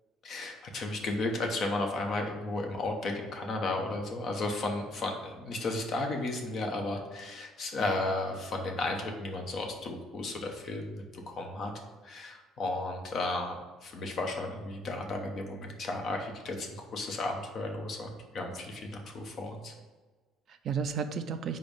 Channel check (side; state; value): both; normal; correlation 0.65